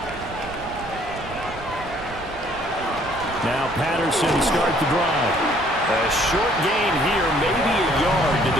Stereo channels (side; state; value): right; noise; rumble, 15 dB below the sound